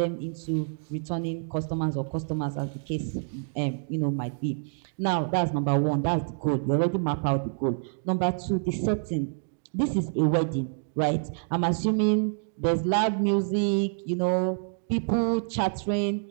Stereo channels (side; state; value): left; silent; digital silence